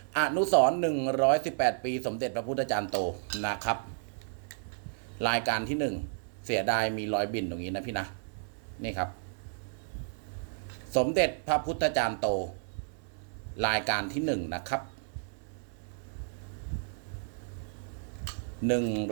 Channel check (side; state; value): left; silent; 56 dB below the other